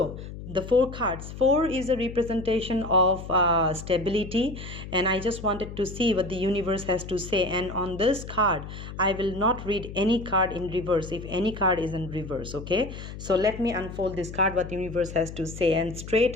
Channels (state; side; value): noise; left; hum, 11 dB below the sound